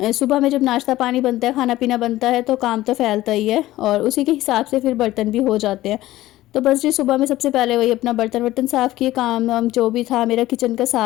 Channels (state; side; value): quieter; right; 15.9 dB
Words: सुबह में जब नाश्ता पानी बनता है, खाना पीना बनता है, तो काम तो फैलता ही है, और उसी के हिसाब से फिर बर्तन भी हो जाते हैं। तो बस जी सुबह में सबसे पहले वही अपना बर्तन वर्तन साफ़ किए, काम वाम जो भी था मेरा किचन का